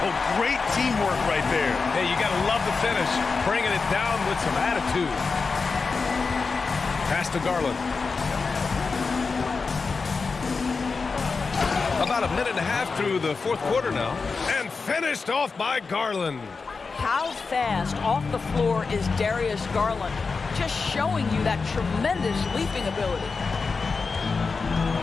Oh, great teamwork right there. Hey, you got to love the finish. Bringing it down with some attitude. Pass to Garland. About a minute and a half through the fourth quarter now. And finished off by Garland. How fast off the floor is Darius Garland? Just showing you that tremendous leaping ability.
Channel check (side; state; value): right; quieter; 4.6 dB